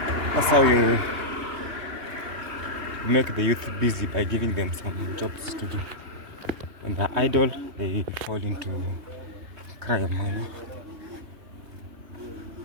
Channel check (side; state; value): left; late; 3.2 ms